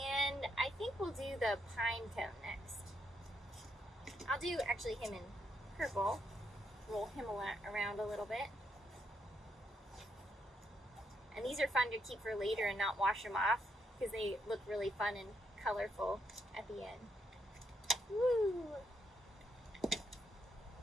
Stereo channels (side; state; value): both; normal; correlation 0.77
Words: I think we'll do the pine cone next. I'll do actually him in purple. Roll him around a little bit. And these are fun to keep for later and not wash them off because they look really fun and colorful at the end. Woo!